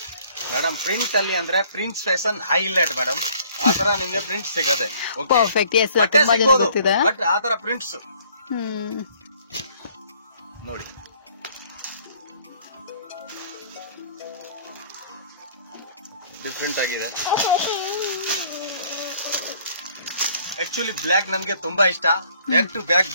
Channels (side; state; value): both; inverted; correlation -0.59